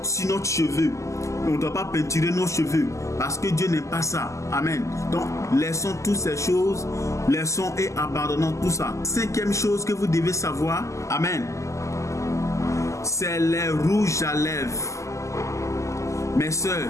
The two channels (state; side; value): late; right; 0.15 ms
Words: sur notre cheveux. On ne doit pas peinturer nos cheveux parce que Dieu n'aime pas ça. Amen. Donc, laissons toutes ces choses, laissons et abandonnons tout ça. Cinquième chose que vous devez savoir, amen, c'est les rouges à lèvres. Mes soeurs,